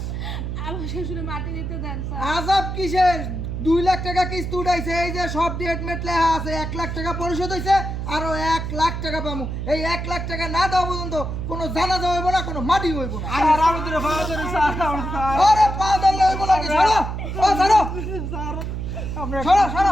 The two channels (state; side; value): noise; right; hum, 4 dB below the sound